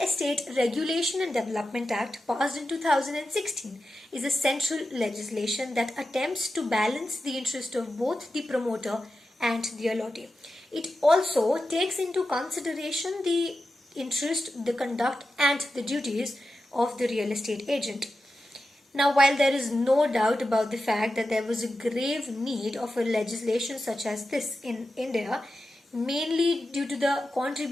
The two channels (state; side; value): normal; both; correlation 0.91